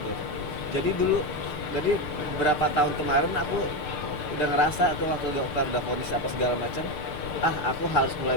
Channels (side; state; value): right; late; 6.7 ms